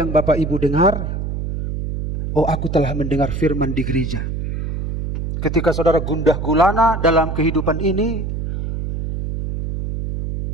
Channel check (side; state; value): right; noise; hum, 4 dB below the sound